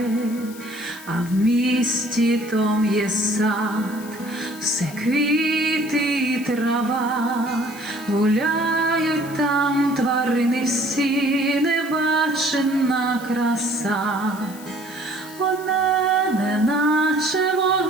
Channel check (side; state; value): left; noise; hiss, 18 dB below the sound